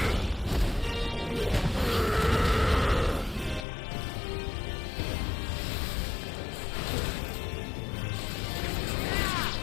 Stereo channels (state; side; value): drops out; right; at 3.7 s